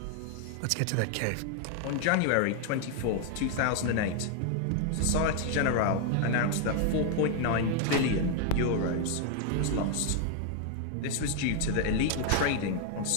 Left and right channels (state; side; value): different; both; correlation 0.00